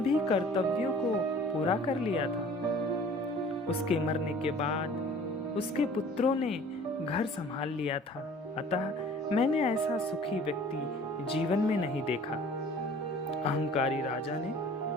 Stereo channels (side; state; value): both; normal; correlation 0.49